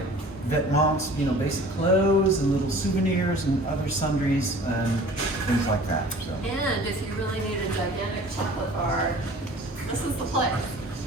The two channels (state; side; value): normal; both; correlation 0.46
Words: vêtements, basic clothes and little souvenirs and other sundries and things like that. So. And if you really need a gigantic chocolate bar, this is the place.